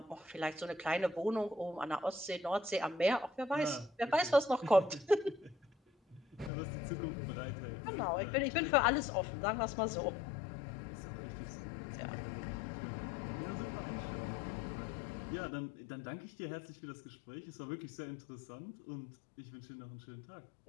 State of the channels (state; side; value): drops out; right; at 6.5 s